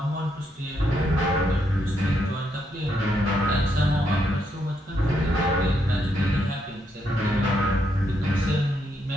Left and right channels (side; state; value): both; normal; correlation 0.77